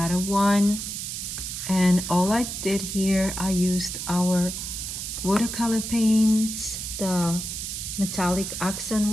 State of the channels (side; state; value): right; noise; hiss, 5 dB below the sound